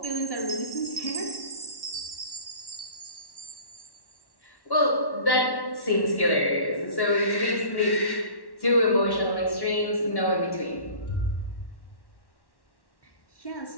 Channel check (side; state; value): right; late; 1.1 ms